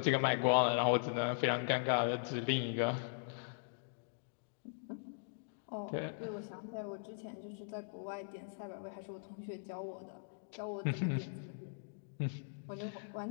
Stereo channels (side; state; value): right; silent; digital silence